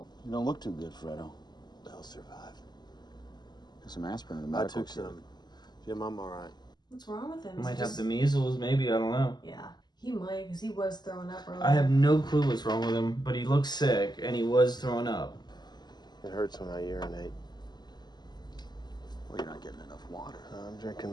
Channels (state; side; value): late; right; 0.21 ms